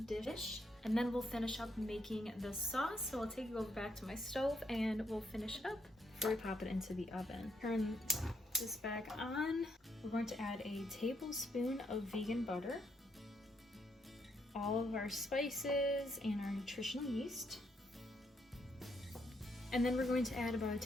dish. And then we'll finish up making the sauce. So I'll take it over back to my stove and we'll finish it up before we pop it into the oven. Turn this back on. We're going to add a tablespoon of vegan butter, all of our spices, and our nutritional yeast. And then we're going to add about a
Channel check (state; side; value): normal; both; correlation 0.75